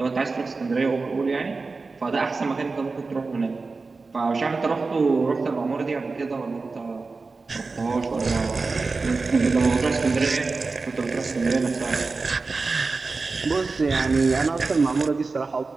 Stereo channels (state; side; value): quieter; left; 4.0 dB